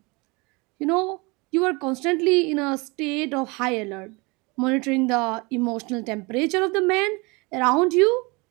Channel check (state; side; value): quieter; left; 27.0 dB